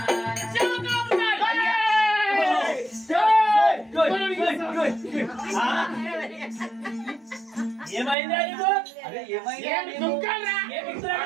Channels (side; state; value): left; drops out; at 8.2 s